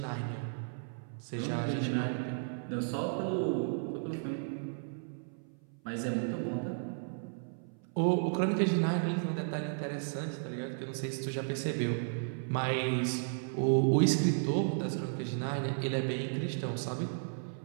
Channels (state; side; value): silent; left; 55 dB below the other